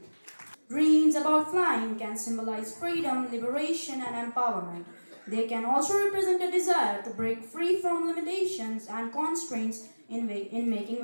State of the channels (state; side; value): inverted; both; correlation -1.00